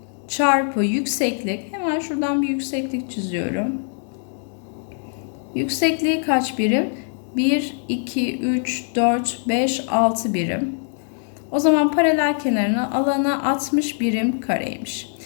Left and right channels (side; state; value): right; silent; 64 dB below the other